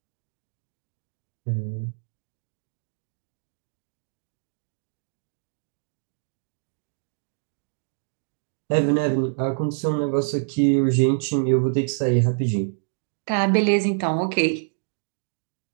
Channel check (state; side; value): silent; left; digital silence